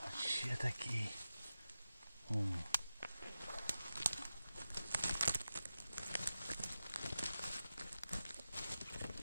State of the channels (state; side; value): inverted; both; correlation -0.93